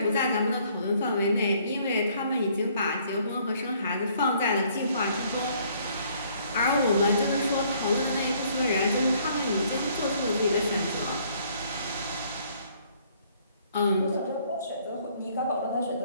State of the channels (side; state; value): both; inverted; correlation -0.63